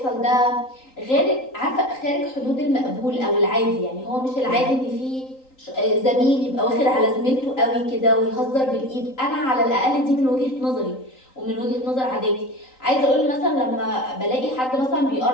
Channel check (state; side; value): late; right; 3.9 ms